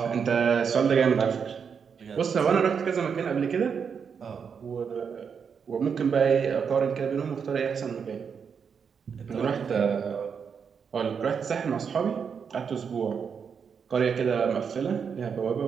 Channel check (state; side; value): quieter; left; 6.5 dB